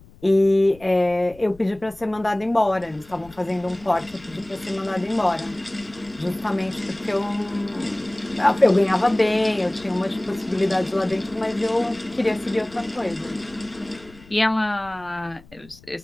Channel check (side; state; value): left; noise; rumble, 24 dB below the sound